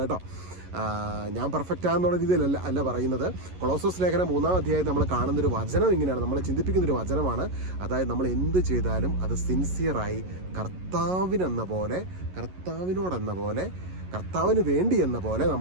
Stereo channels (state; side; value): late; left; 11 ms